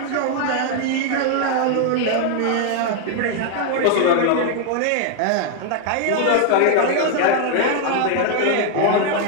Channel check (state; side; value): different; both; correlation 0.00